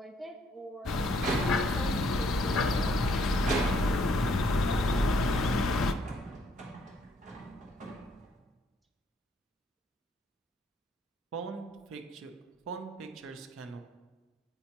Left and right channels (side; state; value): both; normal; correlation 0.68